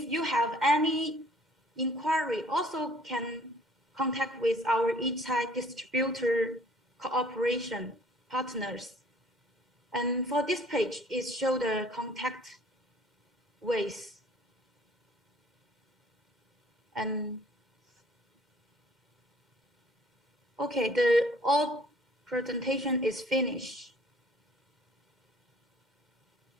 you have any inquiry, also can contact with our e-tag distributor cooperation partners. And for this page, it shows the contact ways. And okay, the all presentation is finished.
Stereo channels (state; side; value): normal; both; correlation 0.56